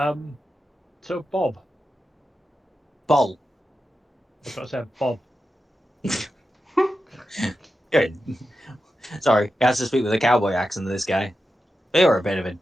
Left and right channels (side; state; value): both; normal; correlation 0.90